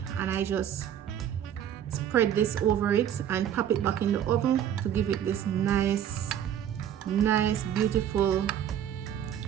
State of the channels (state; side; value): quieter; left; 9.9 dB